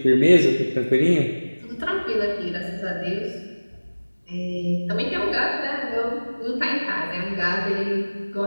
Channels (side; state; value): both; inverted; correlation -1.00